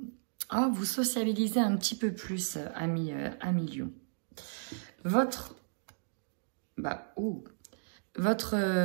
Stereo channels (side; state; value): left; silent; digital silence